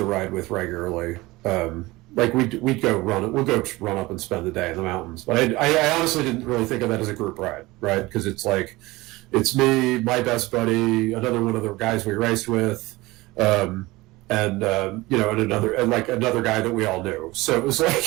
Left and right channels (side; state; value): left; quieter; 20.6 dB